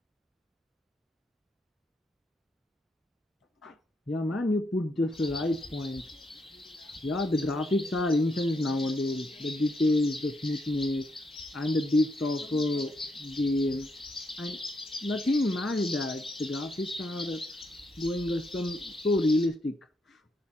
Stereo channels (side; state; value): both; normal; correlation 0.78